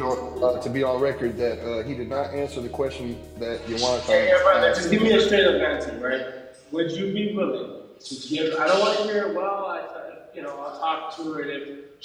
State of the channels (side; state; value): both; identical; correlation 1.00